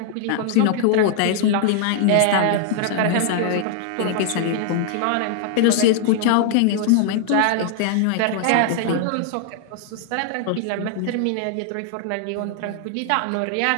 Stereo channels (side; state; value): both; different; correlation -0.01